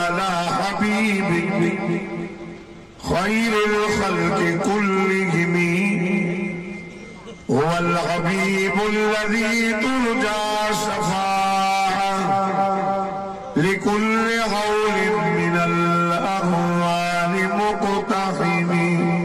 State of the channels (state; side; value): identical; both; correlation 1.00